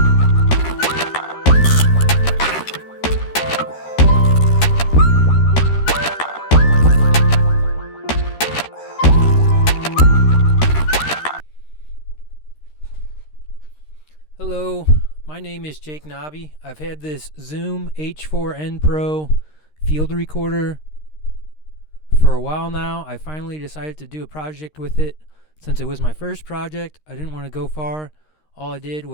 Hello, my name is Jake Knobbe. I've had this Zoom H4n Pro field recorder for a while now. I finally decided to do a project with it. Since it was my first project, I didn't want to go far. All I did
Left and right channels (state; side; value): late; right; 13 ms